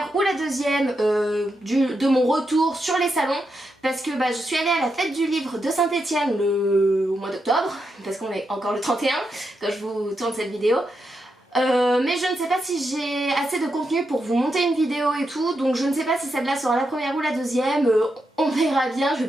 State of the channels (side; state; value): both; normal; correlation 0.85